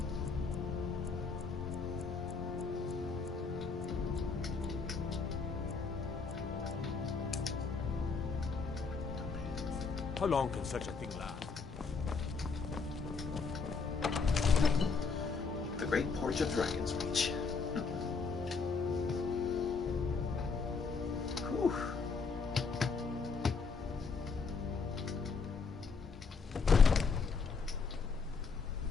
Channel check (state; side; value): quieter; right; 4.9 dB